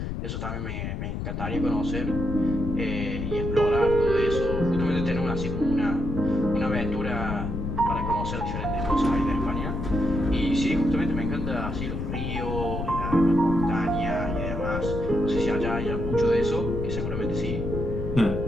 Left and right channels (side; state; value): left; noise; rumble, 4 dB below the sound